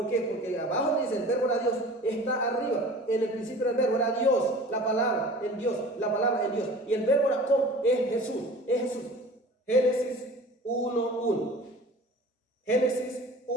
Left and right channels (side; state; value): both; normal; correlation 0.42